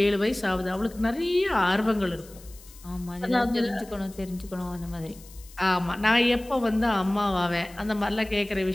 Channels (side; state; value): left; noise; hiss, 22 dB below the sound